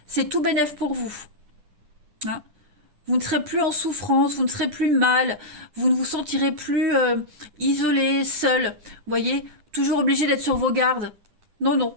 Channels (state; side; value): late; left; 10 ms